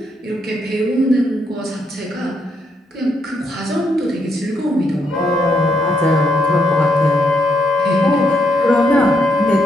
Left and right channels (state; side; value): normal; both; correlation 0.76